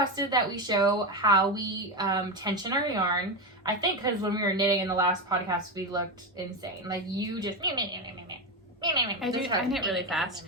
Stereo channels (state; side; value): normal; both; correlation 0.14